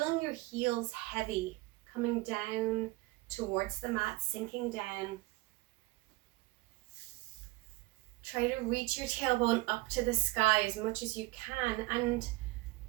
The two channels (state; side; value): quieter; left; 20.5 dB